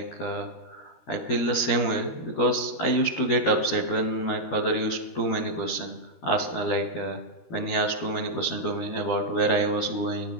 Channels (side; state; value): right; late; 13 ms